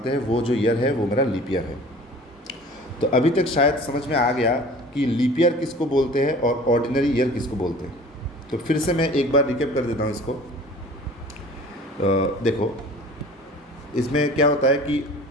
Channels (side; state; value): both; normal; correlation 0.45